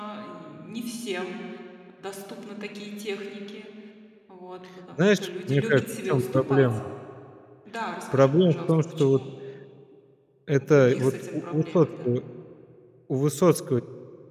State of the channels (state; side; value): identical; both; correlation 1.00